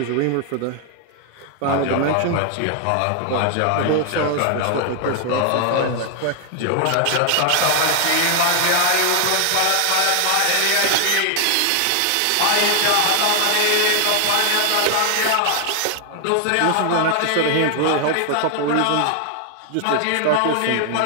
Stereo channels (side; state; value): both; different; correlation 0.00